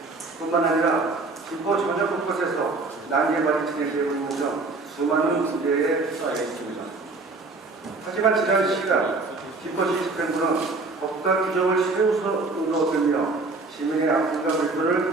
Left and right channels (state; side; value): quieter; left; 3.6 dB